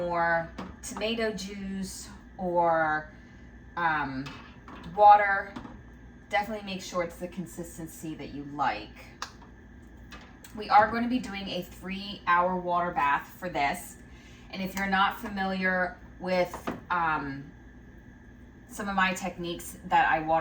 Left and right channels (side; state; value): both; identical; correlation 1.00